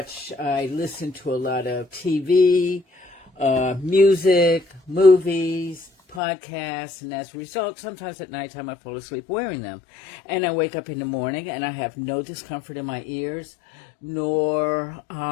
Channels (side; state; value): right; drops out; at 6.2 s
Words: I listen to a lot of TV, music, movies, podcasts, and as a result, sometimes at nighttime I fall asleep wearing them. And I wake up in the morning and I have no discomfort in my ears, nor,